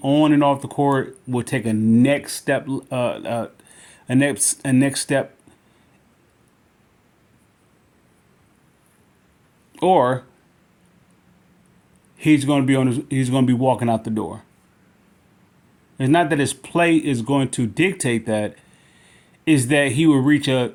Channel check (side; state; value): both; identical; correlation 1.00